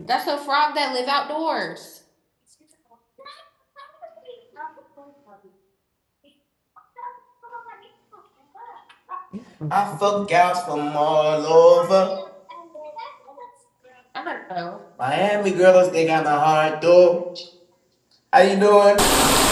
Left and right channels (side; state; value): both; identical; correlation 1.00